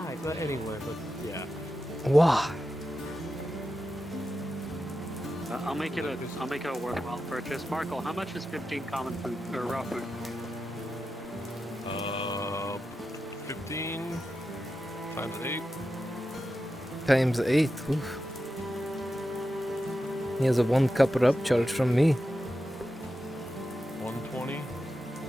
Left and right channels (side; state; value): both; normal; correlation 0.90